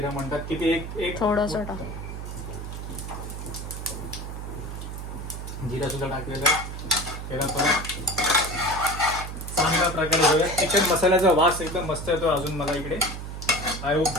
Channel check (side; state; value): right; noise; hum, 8 dB below the sound